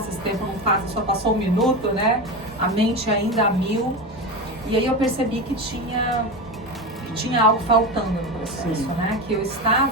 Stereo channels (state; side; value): normal; both; correlation 0.21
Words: esse tempo não passa, só passou 1 minuto, né? A mente ainda a mil. E aí eu percebi que tinha algo faltando no processo, né? Que eu